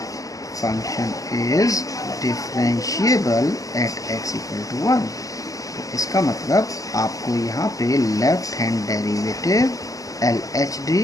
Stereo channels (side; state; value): right; late; 0.17 ms